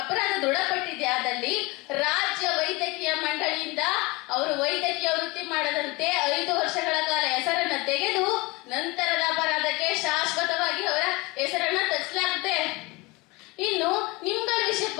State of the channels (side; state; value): right; quieter; 24.3 dB